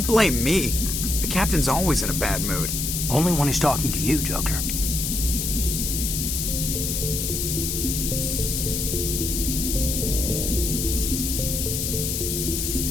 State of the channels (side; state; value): left; noise; hiss, 1 dB below the sound